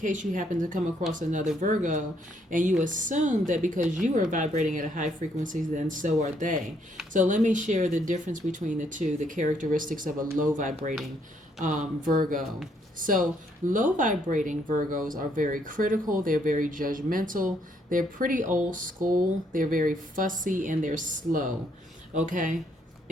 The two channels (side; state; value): both; normal; correlation 0.71